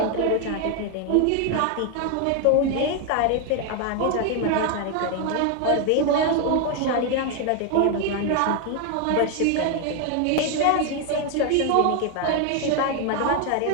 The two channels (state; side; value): different; both; correlation 0.01